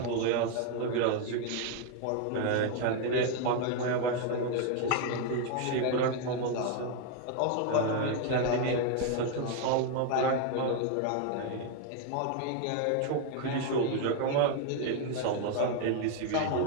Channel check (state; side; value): different; both; correlation 0.01